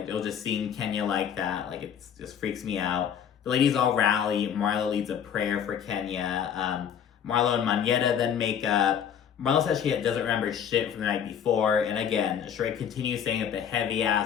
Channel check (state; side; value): quieter; right; 8.4 dB